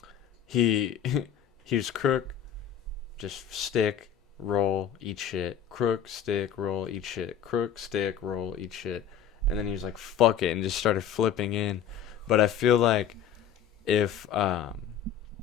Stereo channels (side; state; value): right; quieter; 8.4 dB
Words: he was crook, just stick, roll, eat shit, crook, stick, roll, eat shit, crook, stick, roll, eat shit, and then he was like, fuck it, and just started flipping in. But I feel like if I